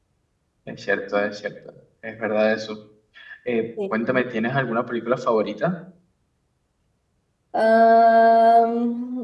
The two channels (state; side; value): identical; both; correlation 1.00